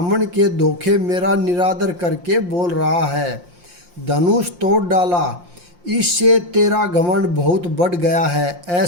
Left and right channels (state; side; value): late; left; 5.7 ms